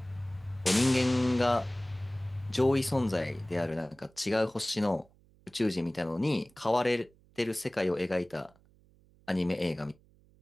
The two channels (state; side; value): noise; right; hum, 30 dB below the sound